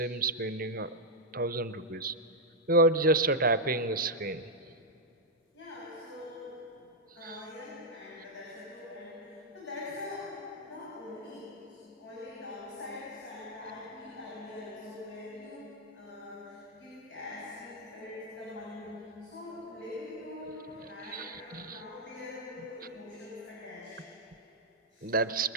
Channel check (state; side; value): normal; both; correlation -0.04